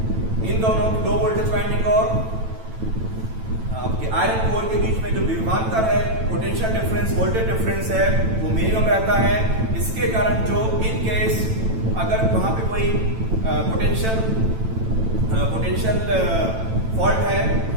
इन दोनों लो वोल्टेज वाइंडिंग और आपके आयरन कोर के बीच में जो विभवांतर है, पोटेंशियल डिफरेंस, वोल्टेज डिफरेंस है, वो मिनिमम रहता है। इसके कारण जो इन केस अगर वहां पे कोई पोटेंशियल फॉल्ट है,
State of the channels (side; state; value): left; late; 9.0 ms